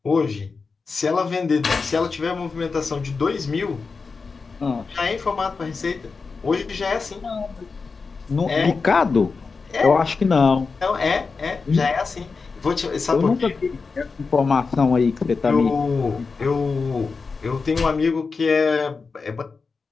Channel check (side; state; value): right; quieter; 4.6 dB